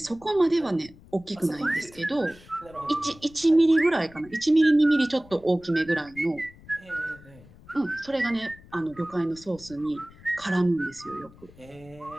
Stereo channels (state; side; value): noise; left; rumble, 23 dB below the sound